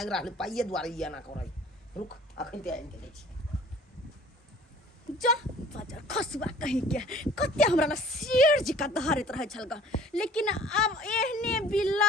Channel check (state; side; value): normal; both; correlation 0.50